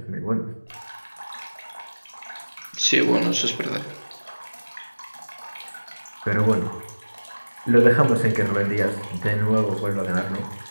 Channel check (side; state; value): both; inverted; correlation -1.00